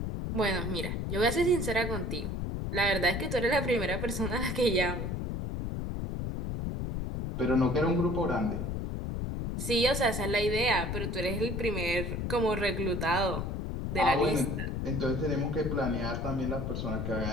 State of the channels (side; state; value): left; noise; rumble, 2 dB below the sound